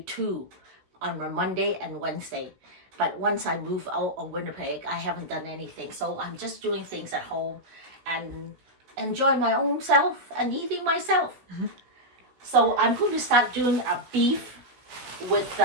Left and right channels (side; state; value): left; late; 16 ms